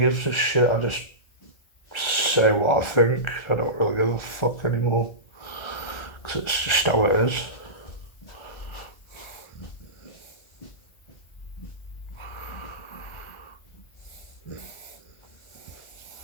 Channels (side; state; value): right; late; 1.4 ms